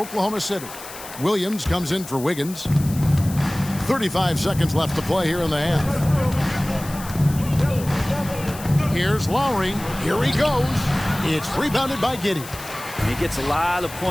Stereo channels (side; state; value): left; noise; hiss, 14 dB below the sound